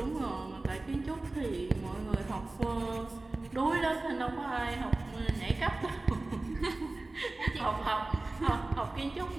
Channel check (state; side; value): quieter; left; 3.0 dB